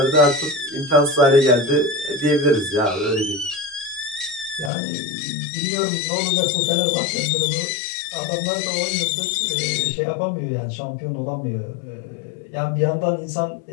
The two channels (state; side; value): drops out; right; at 4.7 s